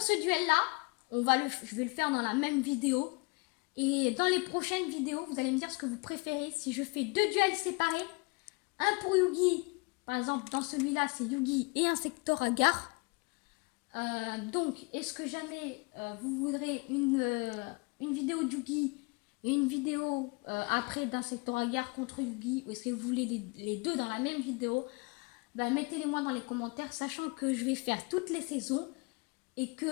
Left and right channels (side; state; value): right; quieter; 28.5 dB